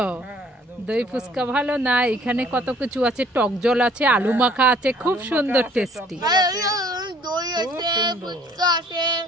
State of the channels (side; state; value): both; normal; correlation 0.57